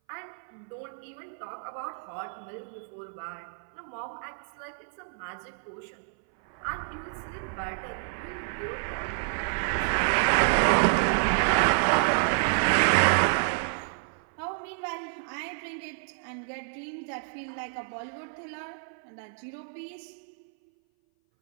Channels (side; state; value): left; silent; 58 dB below the other